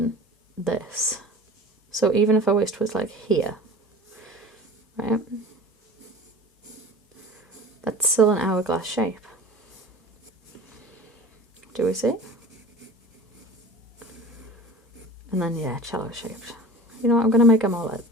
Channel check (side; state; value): both; normal; correlation 0.39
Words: this. So even if her waist was like here, right? That's still an hourglass shape. Do we see? And then, yeah, cello shaped. You know what, I'm going to make them all like